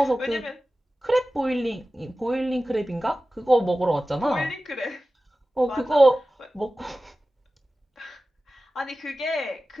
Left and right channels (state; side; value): normal; both; correlation 0.95